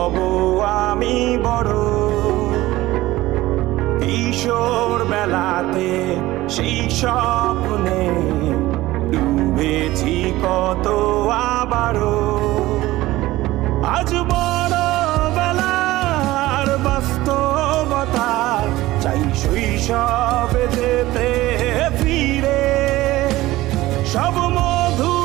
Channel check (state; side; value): quieter; left; 17.5 dB